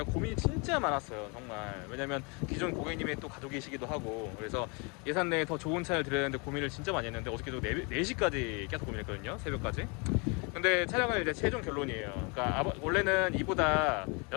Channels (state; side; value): quieter; right; 32.0 dB